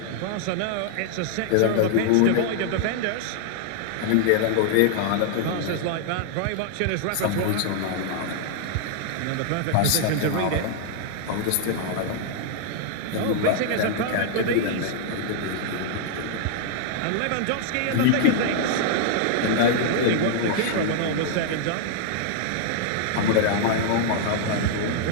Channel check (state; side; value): different; both; correlation -0.01